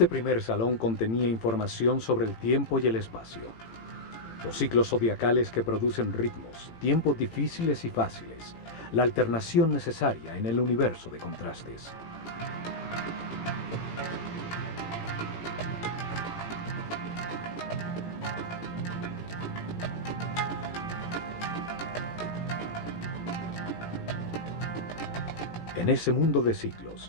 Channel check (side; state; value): right; late; 18 ms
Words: primer salón contenía información sobre el tiempo y el espacio, los ciclos zodiacales que producen ritmos, tiempos difíciles y fáciles, la alternación necesaria en el universo de contrastes. En ese mundo de ciclos,